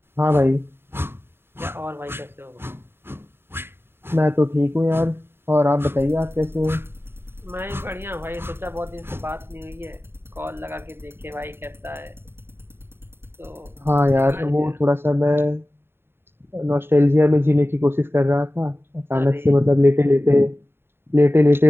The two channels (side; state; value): left; late; 0.11 ms